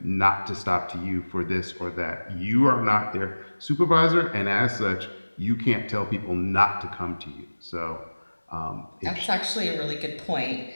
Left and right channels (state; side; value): inverted; both; correlation -1.00